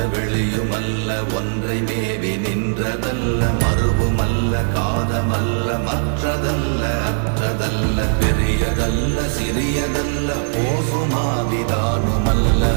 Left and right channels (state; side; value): silent; left; 57 dB below the other